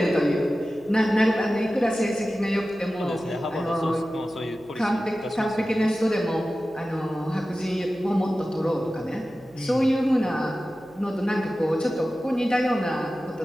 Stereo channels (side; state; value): right; noise; hum, 28 dB below the sound